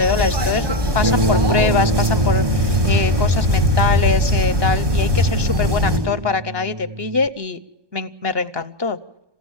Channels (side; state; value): left; late; 1.2 ms